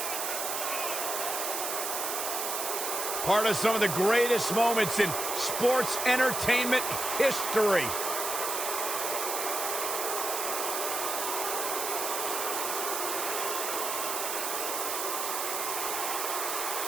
Part of some of the greatest moments in sports entertainment history.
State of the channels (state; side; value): noise; right; hiss, 2 dB below the sound